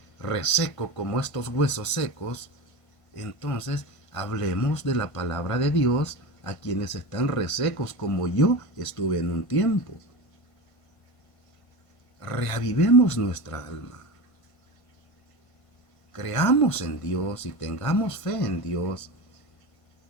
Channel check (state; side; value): late; right; 1.5 ms